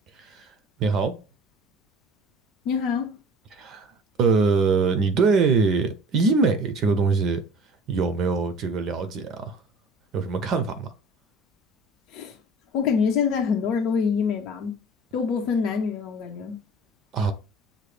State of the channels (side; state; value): both; normal; correlation 0.45